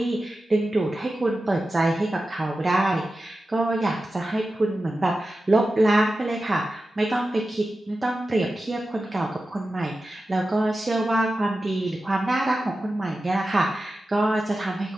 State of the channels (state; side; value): normal; both; correlation 0.93